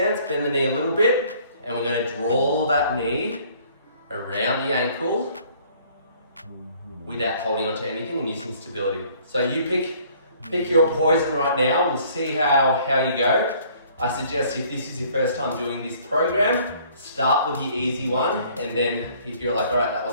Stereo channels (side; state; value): both; inverted; correlation -0.58